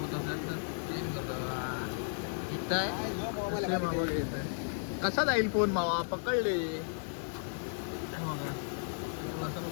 कसा जाईल फोन मावा, पकडले.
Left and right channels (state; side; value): silent; right; digital silence